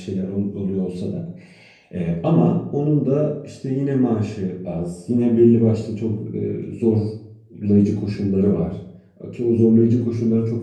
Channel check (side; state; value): both; identical; correlation 1.00